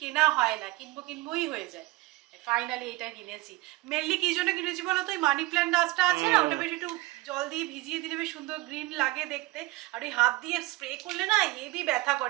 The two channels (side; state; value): left; quieter; 20.4 dB